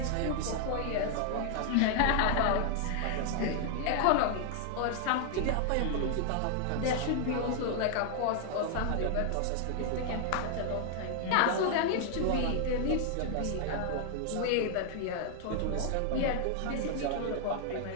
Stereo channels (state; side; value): different; both; correlation 0.00